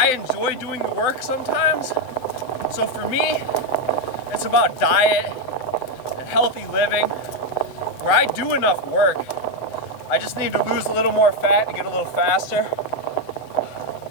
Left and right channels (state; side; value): late; right; 7.9 ms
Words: enjoy doing the work sometimes. So for me, it's about diet and healthy living, where I do enough work. I just need to lose a little more fat to get a little faster.